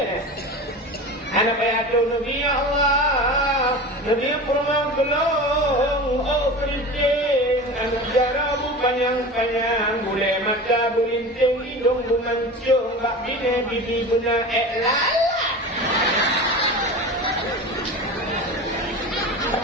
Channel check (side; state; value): both; normal; correlation 0.32